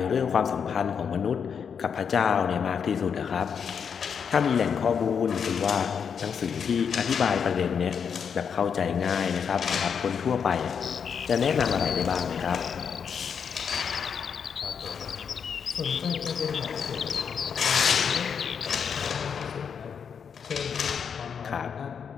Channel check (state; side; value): quieter; right; 6.9 dB